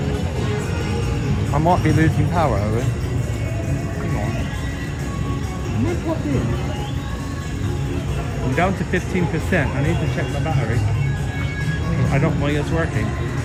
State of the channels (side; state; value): both; identical; correlation 1.00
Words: I might be losing power, Owen. Hang on. Am I plugged in? I'm down to 15%. I need to check my battery. I don't think it's working.